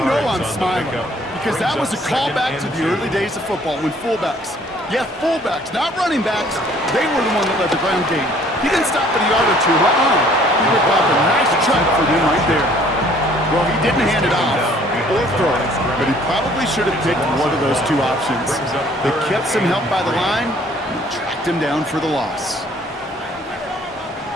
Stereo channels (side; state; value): both; normal; correlation 0.58